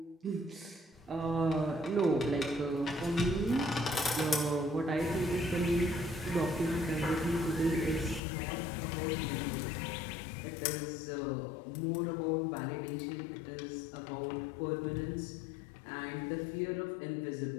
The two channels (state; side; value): drops out; right; at 8.2 s